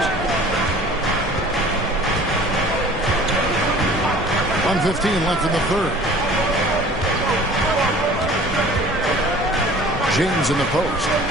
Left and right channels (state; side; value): normal; both; correlation 0.47